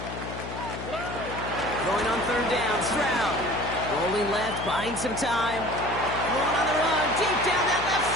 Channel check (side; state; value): left; noise; hum, 9 dB below the sound